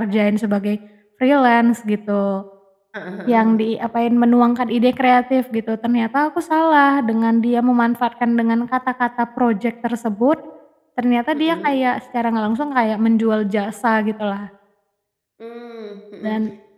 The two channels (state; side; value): identical; both; correlation 1.00